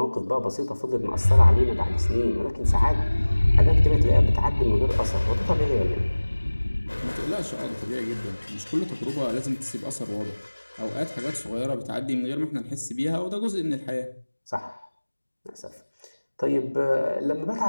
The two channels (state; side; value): inverted; both; correlation -1.00